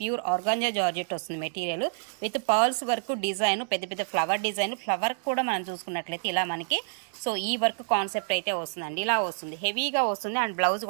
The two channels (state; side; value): silent; left; 59 dB below the other